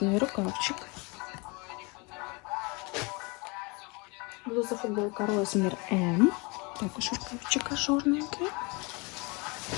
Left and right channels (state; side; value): quieter; right; 28.4 dB